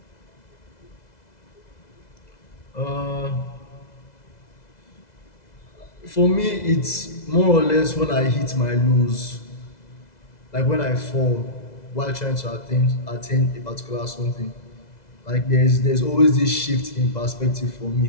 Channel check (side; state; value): right; late; 2.0 ms